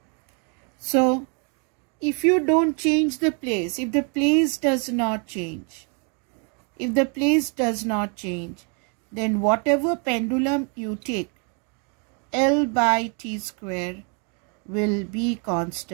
So if you don't change the place, if the place does not change, then whatever pendulum you take, L by T square will be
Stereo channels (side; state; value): left; quieter; 38.1 dB